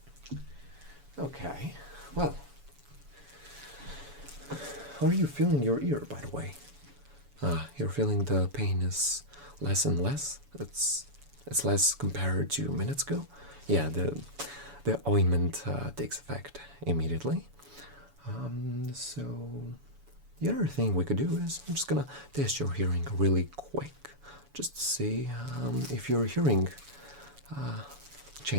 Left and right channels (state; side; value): late; left; 7.0 ms